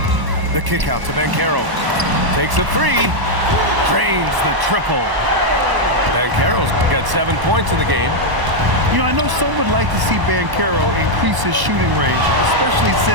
The kick out to Banchero. Takes a 3. Drains the triple. Banchero's got 7 points in the game. You know, I know some would like to see Banchero increase his shooting range, especially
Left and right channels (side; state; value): left; late; 1.0 ms